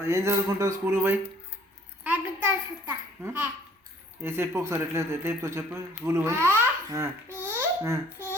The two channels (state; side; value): normal; both; correlation 0.57